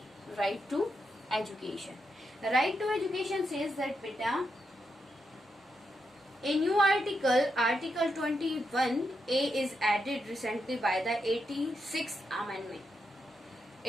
right to education. Right to education says that, beta, a new article, Article 21A is added recently by the 86th Amendment.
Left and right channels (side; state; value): both; normal; correlation 0.84